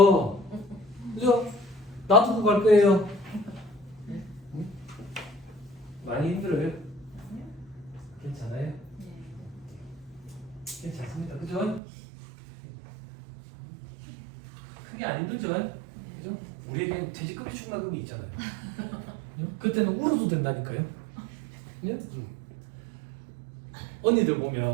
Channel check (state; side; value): drops out; left; at 11.8 s